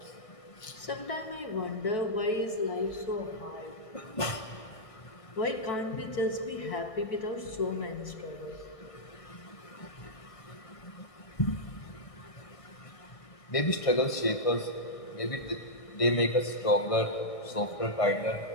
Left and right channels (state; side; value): late; right; 1.5 ms